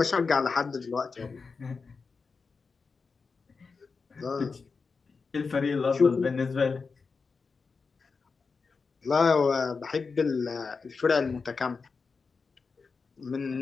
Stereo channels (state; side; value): quieter; right; 4.8 dB